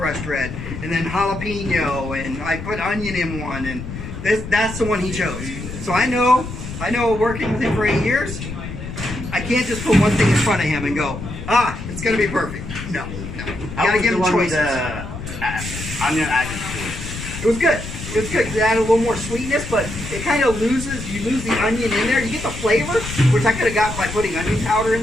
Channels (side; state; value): left; noise; rumble, 9 dB below the sound